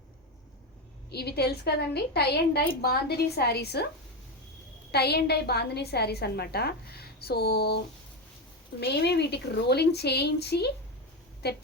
ఇవి తెలుసు కదండి, tie and dye bandhani saris, tie and dye bandhani saris అనమాట. సో మేమే వీటికి రోలింగ్ చేయించి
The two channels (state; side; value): normal; both; correlation 0.13